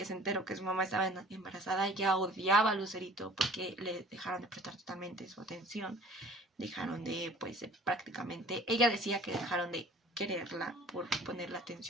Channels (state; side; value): normal; both; correlation 0.49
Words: se enteró que su mamá estaba embarazada ya odiaba a Lucerito porque le dejaron de prestar totalmente su atención, dejaron de, pues prácticamente, ella decía que dejaron de quererla por poner la